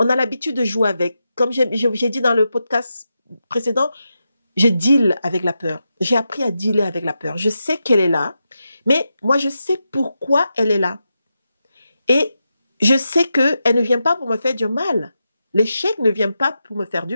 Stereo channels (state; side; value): inverted; both; correlation -0.88